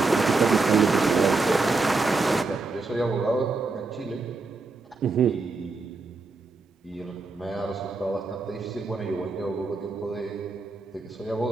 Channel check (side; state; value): left; quieter; 3.8 dB